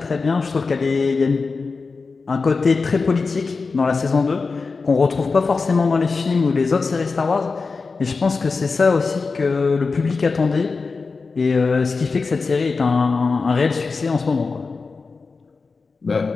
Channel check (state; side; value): quieter; right; 4.4 dB